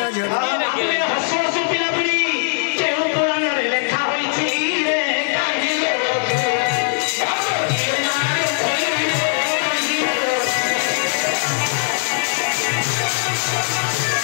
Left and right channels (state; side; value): silent; right; digital silence